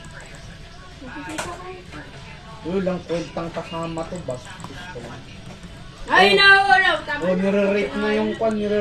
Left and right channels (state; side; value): identical; both; correlation 1.00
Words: Yun lang, kwentang kasama to, bas. Ay, nahulog! Tama O, nire-rate na yung kuhan,